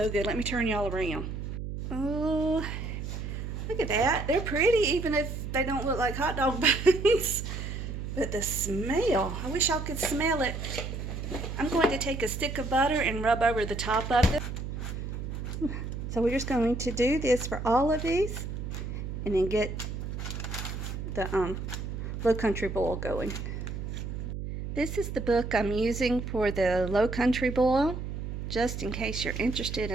good. Let me turn y'all around. Oh, look at that. They're pretty even if they don't look like hot dog buns. But the smell, I wish y'all could smell it. I'm going to take a stick of butter and rub over the top of it. So we're just going to do this for all of these and then get the low country boil going. This is the book I'm using for the low country boil, just in case you're interested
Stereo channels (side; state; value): right; noise; hum, 6 dB below the sound